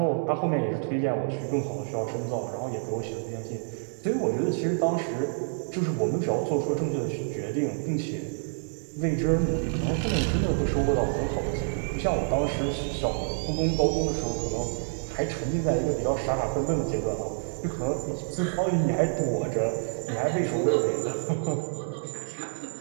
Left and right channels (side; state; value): left; silent; digital silence